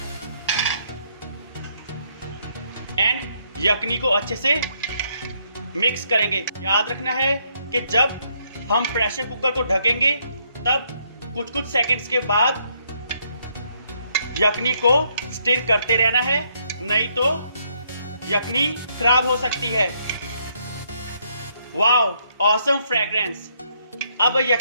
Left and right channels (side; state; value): both; inverted; correlation -0.72